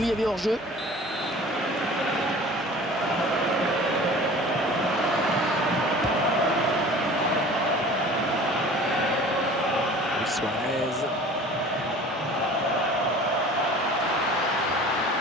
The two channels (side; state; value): both; normal; correlation 0.43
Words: y avait hors-jeu. Suarez.